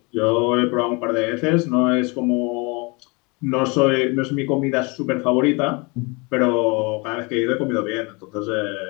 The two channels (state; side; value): quieter; right; 28.8 dB